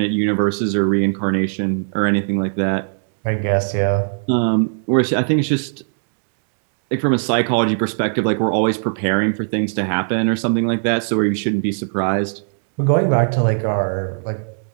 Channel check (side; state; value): left; silent; digital silence